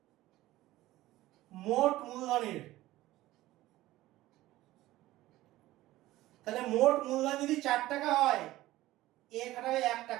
মোট মূলধনের, তাহলে মোট মূলধন যদি 4 টাকা হয়, এ খাটাবে 1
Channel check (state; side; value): quieter; left; 16.6 dB